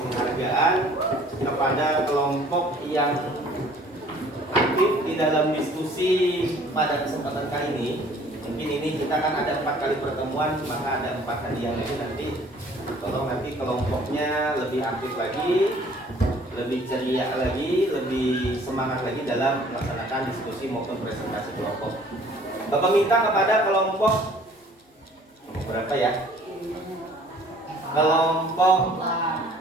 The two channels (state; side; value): normal; both; correlation 0.54